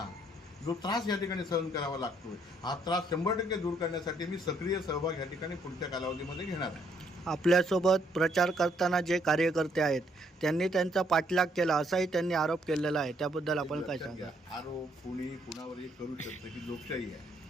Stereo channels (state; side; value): normal; both; correlation 0.70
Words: जो त्रास या ठिकाणी सहन करावा लागतो हा त्रास 100% दूर करण्यासाठी मी सक्रिय सहभाग या ठिकाणी पुढच्या कालावधीमध्ये घेणार आहे. आपल्यासोबत प्रचार करताना जे कार्यकर्ते आहेत त्यांनी त्यांचा पाठलाग केला असाही त्यांनी आरोप केलेला आहे, त्याबद्दल आपण काय सांगा? आरोप कुणावरही करू शकतं की लोकशाही आहे